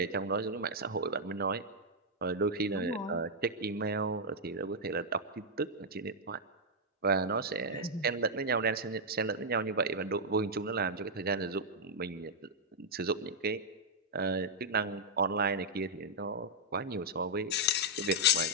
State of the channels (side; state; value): both; normal; correlation -0.04